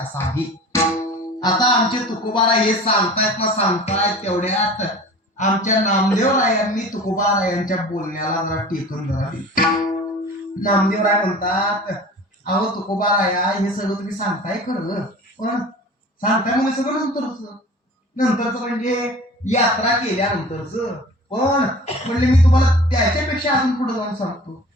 आहे. आता आमचे तुकोबारा हे सांगतायत तेवढ्यात आमच्या नामदेवरायांनी तुकोबारायांच्या बोलण्याला जरा टेकून जरा दिली. नामदेवराय म्हणतात, अहो तुकोबाराया हे सगळं तुम्ही सांगताय खरं, पण सांगताय म्हणजे सगळं नंतरच म्हणजे यात्रा केल्यानंतरच. पण म्हणले मी तुम्हाला त्याच्यापेक्षा अजून पुढे जाऊन सांगतो.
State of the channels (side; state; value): both; normal; correlation 0.41